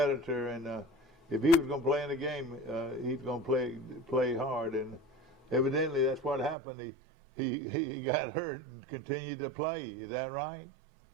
and if he was going to play in the game, he's going to play hard. And evidently, that's what happened. He got hurt and continued to play. Is that right?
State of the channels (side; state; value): left; drops out; at 6.6 s